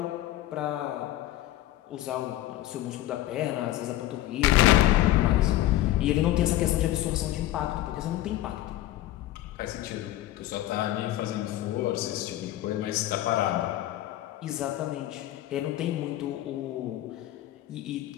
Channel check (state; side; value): quieter; right; 14.7 dB